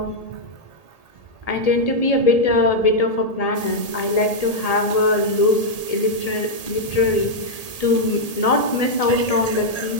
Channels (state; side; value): late; right; 1.8 ms